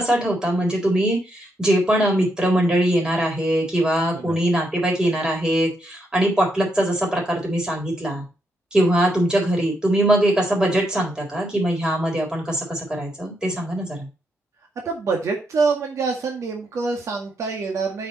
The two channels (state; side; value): normal; both; correlation 0.79